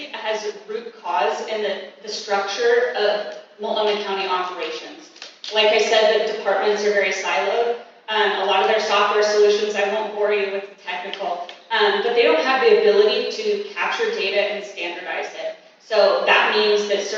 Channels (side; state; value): both; identical; correlation 1.00